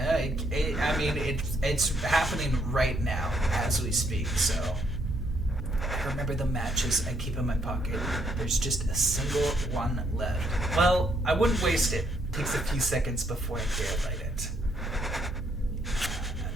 It's happening right now as we speak, so remember the matches I keep in my pocket. There's just a single one left. Well, I wouldn't waste it. It takes a few seconds before I dare light it.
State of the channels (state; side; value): normal; both; correlation 0.71